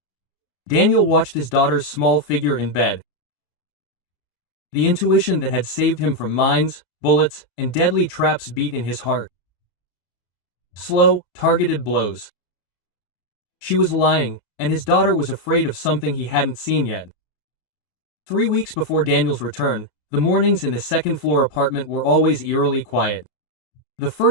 Daniel watched his daughter's small figure in bed. The intuition that had saved him from mines, bullets, and deadly traps beat in his heart. Slow, targeted blows. She was lying, and his daughter was afraid of something he hadn't seen yet. 3 weeks before Daniel's return, the mornings in the second-floor apartment were always eerily quiet. The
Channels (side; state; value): right; late; 32 ms